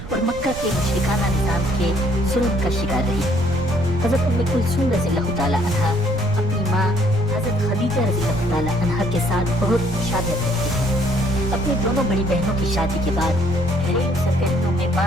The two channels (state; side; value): noise; right; rumble, 12 dB below the sound